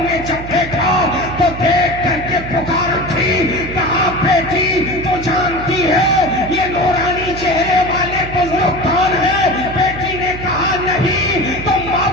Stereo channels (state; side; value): noise; right; hum, 10 dB below the sound